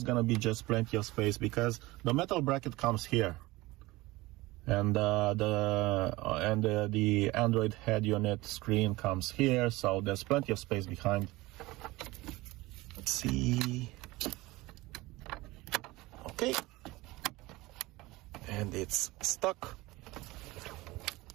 gonna be just plenty of space because the metal bracket comes here, and the Android head unit screen comes here, so there's plenty of space behind. Let's see. Okay, and it's stuck.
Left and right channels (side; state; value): left; quieter; 20.4 dB